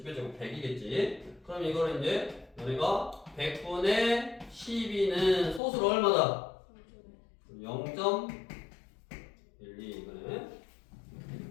제곱 100이겠지. 그럼 이거를 이제 너네가 100분의 12는 소수로 얼마다? 0.12 이거네.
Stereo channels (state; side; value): drops out; right; at 5.6 s